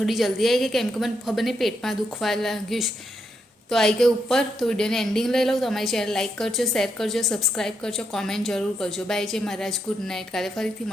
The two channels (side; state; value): both; normal; correlation 0.80